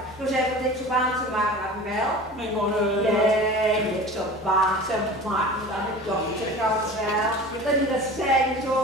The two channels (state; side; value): normal; both; correlation 0.37